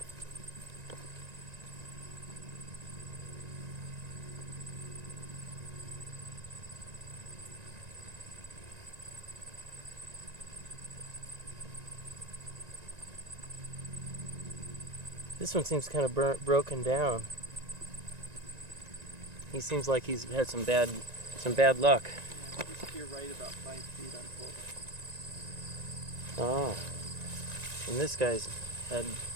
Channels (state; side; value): late; left; 1.9 ms